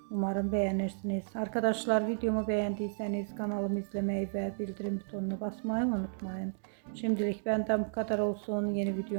Umarım beğenirsiniz. Arkadaşlar, videomu beğendiyseniz kanalımı izlemeyi ve bildirim butonuna basmayı unutmayın. Şimdilik benden bu kadar olsun. Yeni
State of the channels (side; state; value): left; silent; digital silence